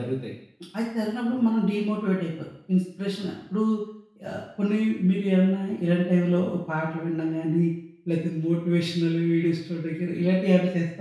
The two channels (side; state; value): both; identical; correlation 1.00